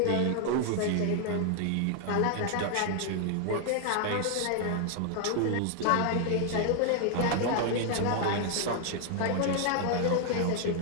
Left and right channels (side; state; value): both; different; correlation 0.00